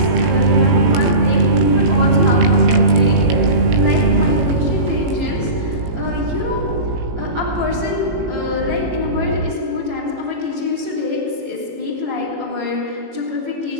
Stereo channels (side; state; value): left; late; 18 ms